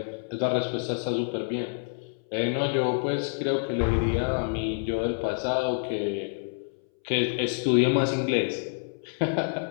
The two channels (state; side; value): silent; right; 60 dB below the other